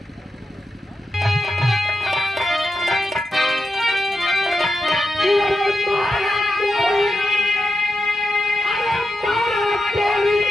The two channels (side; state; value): both; normal; correlation 0.88